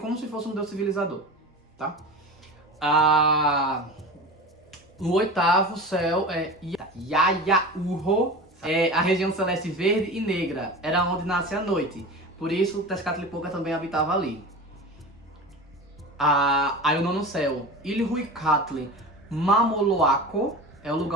se fosse um deus civilizador, tá? O oitavo céu é Yayaurro, a região celeste verde e negra, era onde nasce a noite. Por isso, Tezcatlipoca também habitava ali. Aí o nono céu, Ilhuicatli Mamoloaco, é o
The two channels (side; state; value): both; normal; correlation 0.30